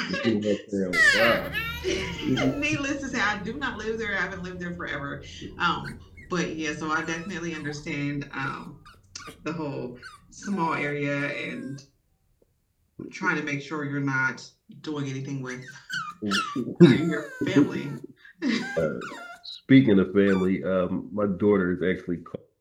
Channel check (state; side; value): identical; both; correlation 1.00